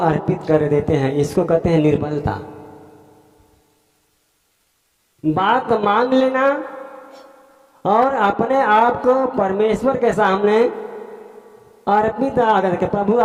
कर देते हैं। इसको कहते हैं निर्बलता। बात मान लेना और अपने आप को परमेश्वर के सामने अर्पित करके, प्रभु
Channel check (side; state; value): both; identical; correlation 1.00